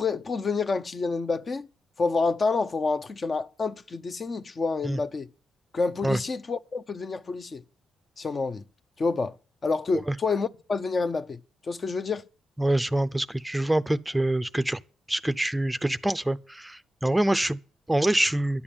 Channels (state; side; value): normal; both; correlation 0.92